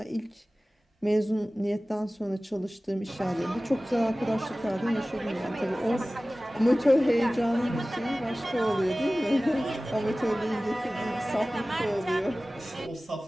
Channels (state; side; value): normal; both; correlation 0.97